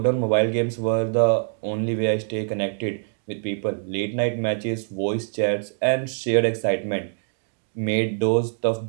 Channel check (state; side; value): silent; left; digital silence